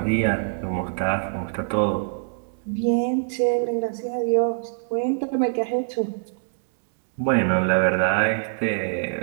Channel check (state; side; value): silent; left; 62 dB below the other